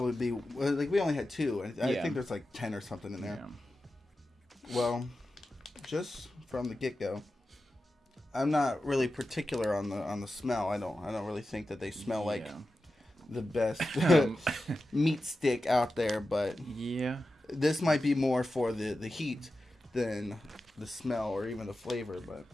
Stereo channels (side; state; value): both; normal; correlation 0.92